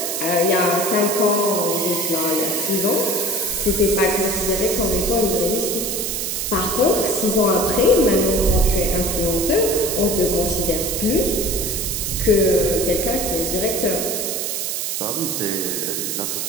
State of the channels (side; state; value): right; noise; hiss, 2 dB below the sound